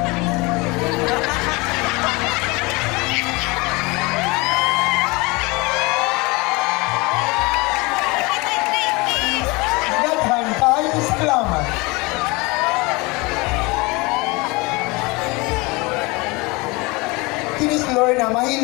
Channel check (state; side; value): quieter; right; 25.3 dB